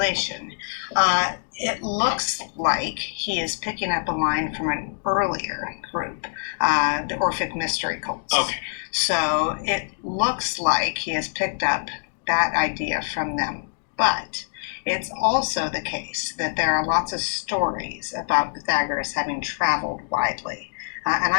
It looks like he is picking up a line from an earlier group, the Orphic mystery cults. Okay. So it looks like he has picked up that idea from them. But it's also the case that there are lots of stories about Pythagoras having traveled widely. And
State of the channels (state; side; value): silent; right; digital silence